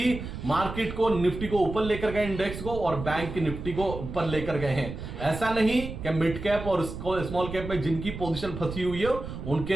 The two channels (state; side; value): noise; right; rumble, 8 dB below the sound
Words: मार्केट को, निफ्टी को ऊपर लेकर गए, इंडेक्स को, और बैंक की निफ्टी को ऊपर लेकर गए हैं। ऐसा नहीं कि मिड कैप और स्मॉल कैप में जिनकी पोजीशन फंसी हुई है